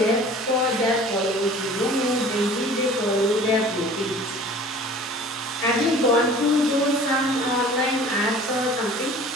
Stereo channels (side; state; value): both; normal; correlation 0.46